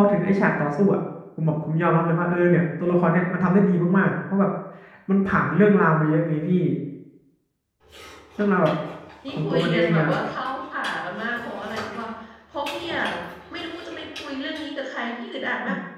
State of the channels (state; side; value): identical; both; correlation 1.00